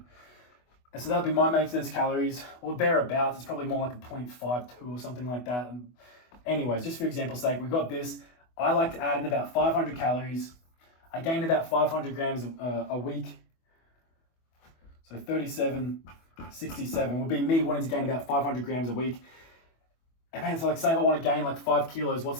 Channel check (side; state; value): right; late; 24 ms